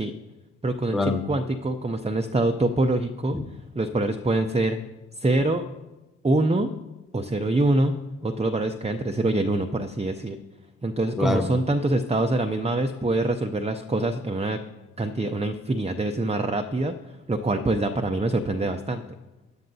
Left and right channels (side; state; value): both; normal; correlation 0.71